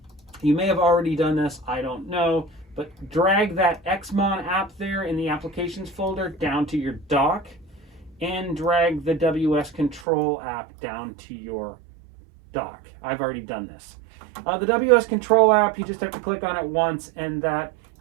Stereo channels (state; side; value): drops out; left; at 10.1 s